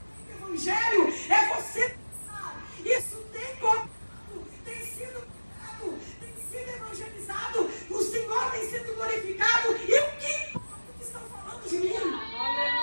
o Evangelho? É você pensar, isso tem contado, tem sido pregado, tem sido evangelizado, o Senhor tem sido glorificado, e o que importa que estão falando de mim?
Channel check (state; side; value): inverted; both; correlation -1.00